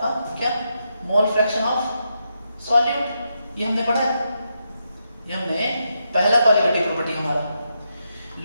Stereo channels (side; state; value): both; inverted; correlation -0.83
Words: क्या? Mole fraction of solute. ये हमने पढ़ा है, ये हमने पहला क्वालिटेटिव प्रॉपर्टी हमारा,